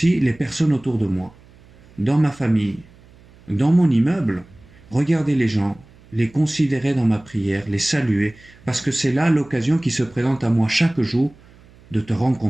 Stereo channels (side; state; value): right; noise; hum, 26 dB below the sound